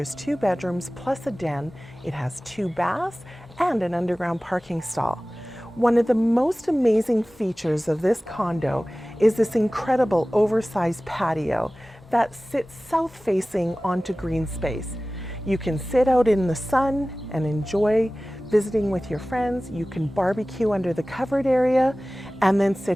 2 bedrooms plus a den. It has 2 baths and an underground parking stall. One of the most amazing features of this condo is this incredible oversized patio that sits south facing onto GREENSPACE. You can sit out in the sun and enjoy visiting with your friends. You can barbecue under the covered area and then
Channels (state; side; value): normal; both; correlation 0.97